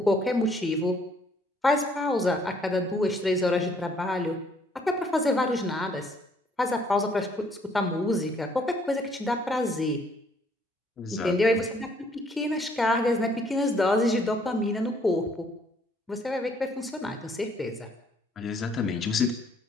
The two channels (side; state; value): both; normal; correlation 0.65